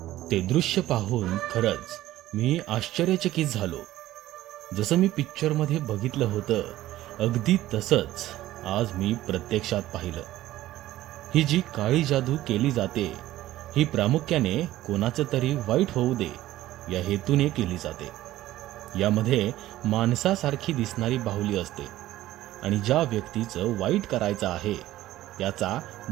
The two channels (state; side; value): quieter; left; 15.1 dB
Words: ते दृश्य पाहून खरंच मी आश्चर्यचकित झालो. जसं मी पिक्चरमध्ये बघितलं होतं अगदी तसंच आज मी प्रत्यक्षात पाहिलं. ही जी काळी जादू केली जाते ही प्रामुख्याने कोणाचं तरी वाईट होऊ दे या हेतूने केली जाते. यामध्ये माणसासारखी दिसणारी बाहुली असते आणि ज्या व्यक्तीचं वाईट करायचं आहे त्याचा